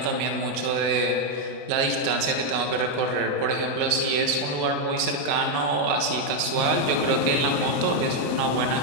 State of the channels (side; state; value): left; late; 31 ms